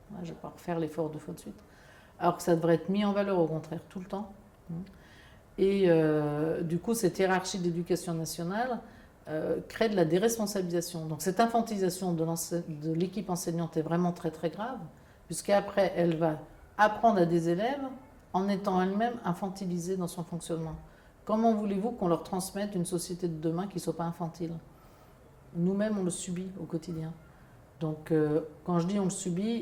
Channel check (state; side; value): identical; both; correlation 1.00